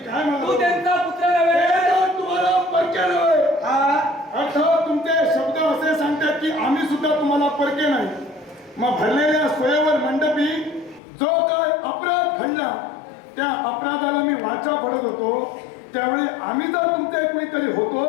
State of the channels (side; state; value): right; drops out; at 11.0 s